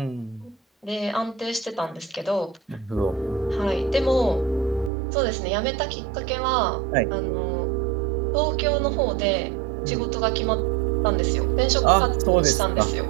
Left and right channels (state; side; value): drops out; left; at 4.9 s